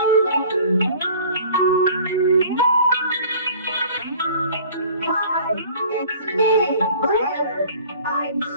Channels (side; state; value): both; inverted; correlation -0.48